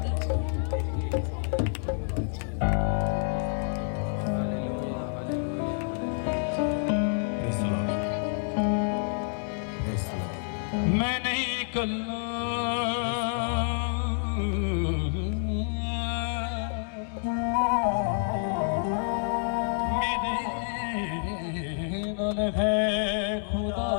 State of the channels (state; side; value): silent; right; digital silence